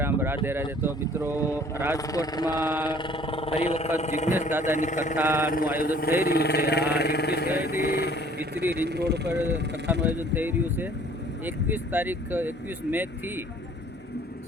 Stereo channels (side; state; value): both; normal; correlation 0.54